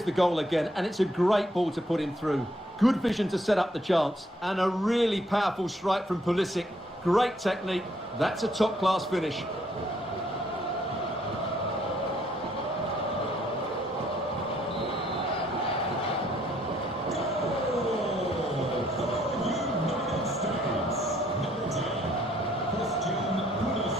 the goal again, and it's a great ball to put him through. Good vision to set up the chance, and a really powerful strike from Pulisic. Great technique. That's a top-class finish.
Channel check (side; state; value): both; normal; correlation 0.68